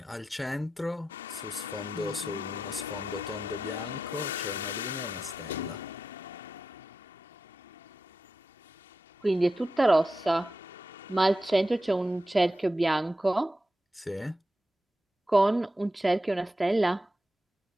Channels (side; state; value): both; normal; correlation 0.90